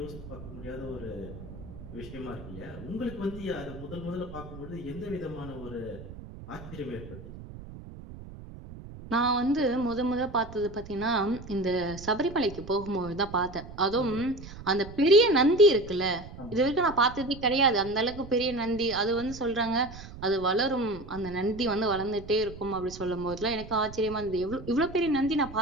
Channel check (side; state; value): right; noise; rumble, 14 dB below the sound